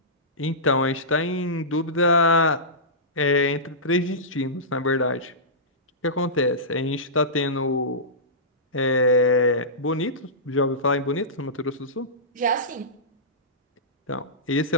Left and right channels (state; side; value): normal; both; correlation -0.18